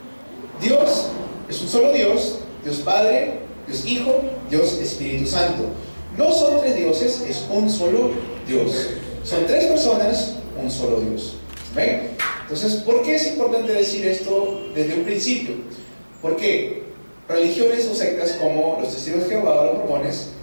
Dios es un solo Dios: Dios Padre, Dios Hijo, Dios Espíritu Santo. No son tres dioses, es un solo Dios. Son tres personas, un solo Dios. ¿Ven? Entonces, ¿por qué es importante decir esto desde un principio? Porque religiones o sectas como los Testigos de Jehová o los Mormones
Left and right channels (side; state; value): both; inverted; correlation -1.00